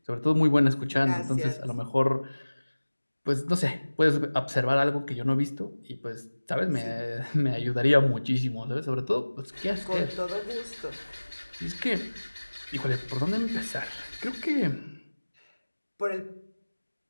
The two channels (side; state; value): both; inverted; correlation -1.00